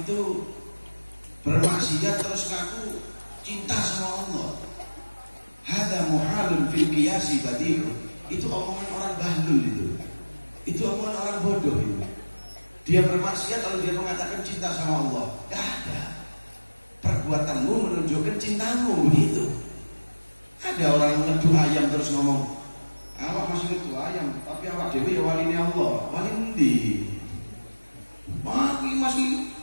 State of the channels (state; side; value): inverted; both; correlation -1.00